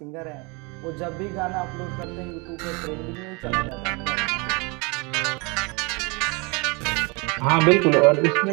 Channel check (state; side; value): quieter; left; 28.8 dB